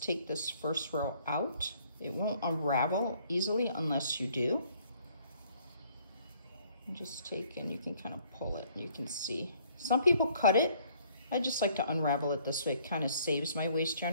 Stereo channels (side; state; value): both; inverted; correlation -0.62